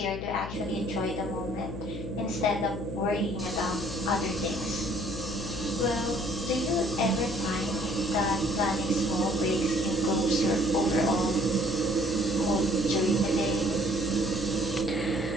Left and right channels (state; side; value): noise; left; hum, 8 dB below the sound